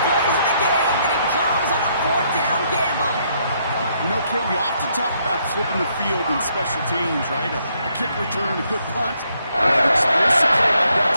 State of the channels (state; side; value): inverted; both; correlation -0.73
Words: plays of the game, and it comes on a 4th down gamble. You know, Kate, we often talk about flipping the field in special teams, right? A kick return, a good punt. An explosive play like that